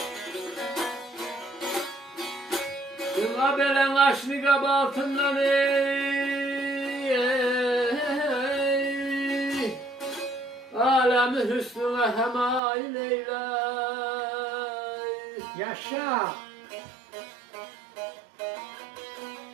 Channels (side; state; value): left; drops out; at 12.6 s